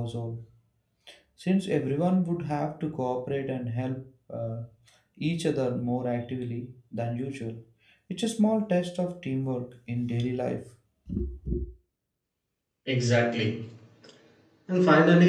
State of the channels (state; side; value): identical; both; correlation 1.00